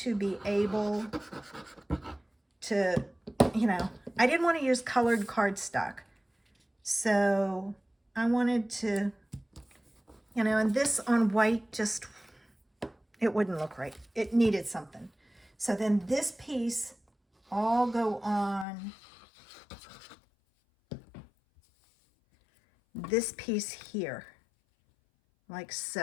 be able to, I didn't want to use colored cardstock. So I wanted to, and this on white just, it wouldn't look right. It needed something. So then this piece all go on this piece here, like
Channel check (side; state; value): right; drops out; at 18.7 s